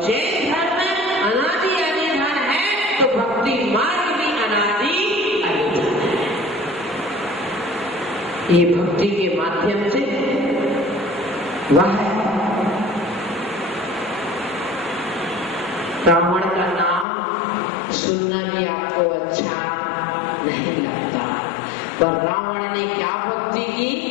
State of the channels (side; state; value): right; drops out; at 17.1 s